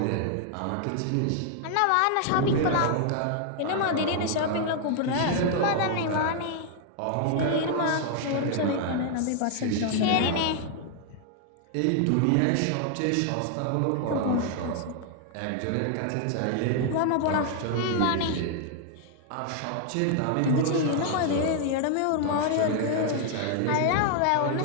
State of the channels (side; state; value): both; different; correlation 0.00